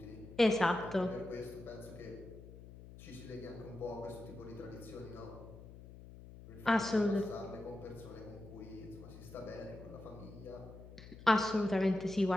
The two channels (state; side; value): noise; left; hum, 16 dB below the sound